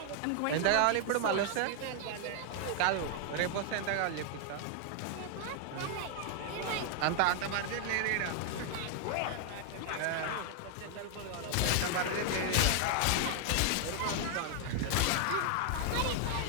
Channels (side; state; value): both; different; correlation 0.00